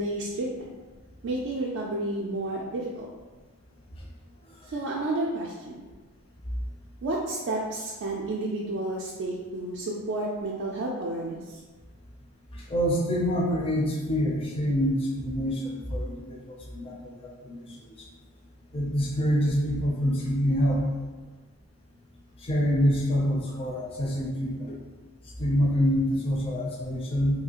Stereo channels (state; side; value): normal; both; correlation 0.63